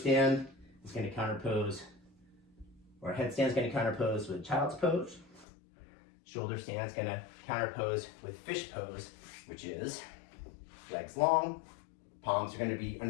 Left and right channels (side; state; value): right; drops out; at 5.5 s